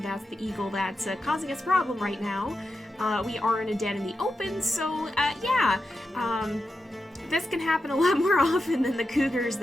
the eagle that's causing us a problem right now. We are in a den in the open, so yeah. This can happen a lot more often than the cougars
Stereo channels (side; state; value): both; normal; correlation 0.89